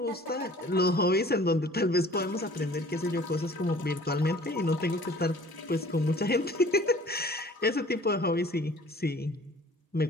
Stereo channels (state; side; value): normal; both; correlation 0.49